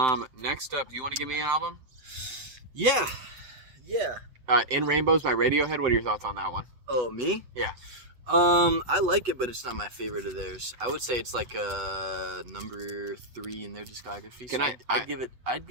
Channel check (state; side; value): late; left; 8.0 ms